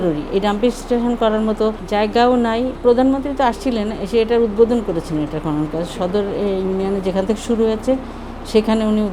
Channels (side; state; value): left; noise; hum, 29 dB below the sound